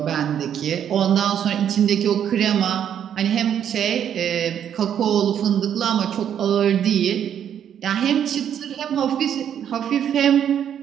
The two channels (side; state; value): left; quieter; 9.3 dB